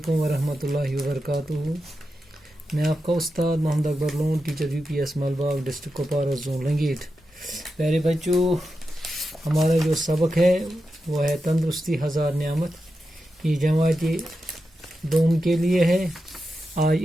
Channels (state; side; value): normal; both; correlation 0.89